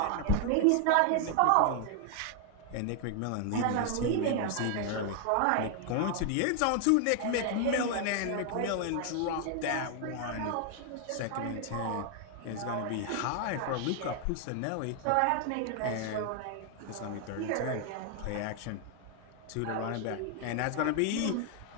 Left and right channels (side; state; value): both; different; correlation 0.00